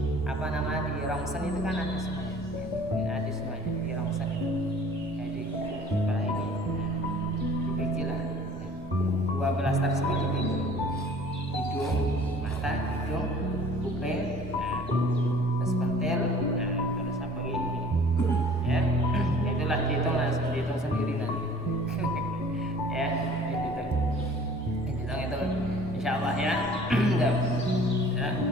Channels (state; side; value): normal; both; correlation 0.50